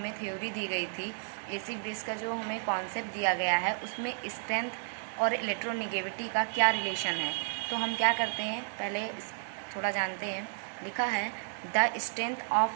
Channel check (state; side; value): silent; left; 56 dB below the other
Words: थ्योरी दी गई थी, एसिड बेस का जो हमें कॉन्सेप्ट दिया गया है, उसमें स्ट्रेंथ और इलेक्ट्रोनेगेटिविटी का क्या रिलेशन है। तो हम क्या करते हैं, पहले थोड़ा जानते हैं। लिखा है the strength